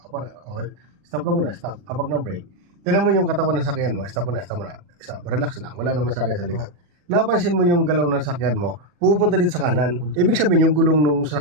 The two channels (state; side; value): late; left; 40 ms